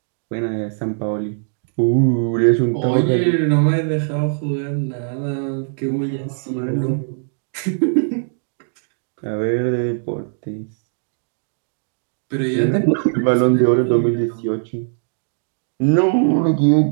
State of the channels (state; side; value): silent; left; digital silence